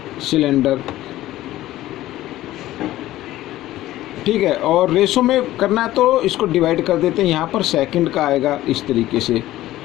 सिलेंडर, ठीक है। और रेशो में करना है तो इसको डिवाइड कर देते हैं, यहाँ पर सेकंड का आएगा इस तरीके से।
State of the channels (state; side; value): quieter; right; 15.3 dB